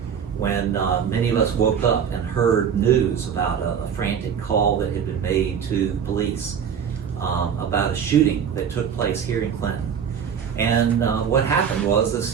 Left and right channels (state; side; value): quieter; left; 7.6 dB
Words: when many of us woke up and heard news about a frantic call that had been made to police about a shooting that took place here in Clinton. And what happened was